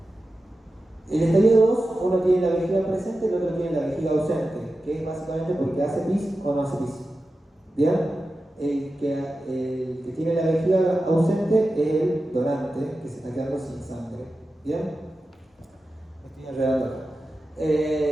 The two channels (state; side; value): normal; both; correlation 0.93